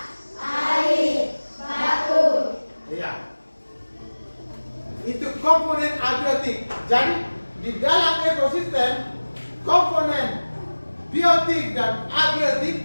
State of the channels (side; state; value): both; inverted; correlation -1.00